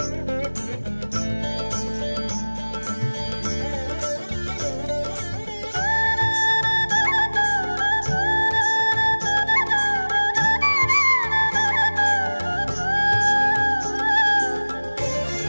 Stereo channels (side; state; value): both; inverted; correlation -1.00